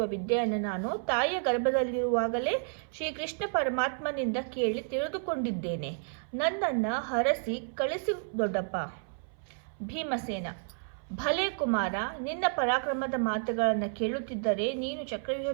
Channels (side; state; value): left; silent; 57 dB below the other